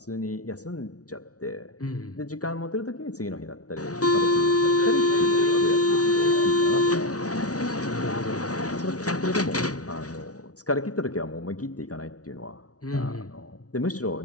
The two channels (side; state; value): right; late; 0.67 ms